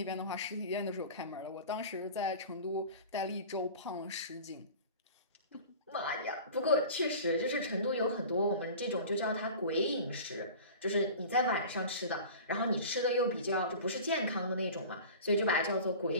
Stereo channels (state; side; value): inverted; both; correlation -0.39